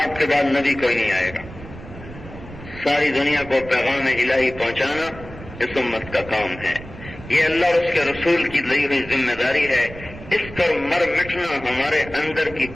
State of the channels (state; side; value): noise; right; rumble, 15 dB below the sound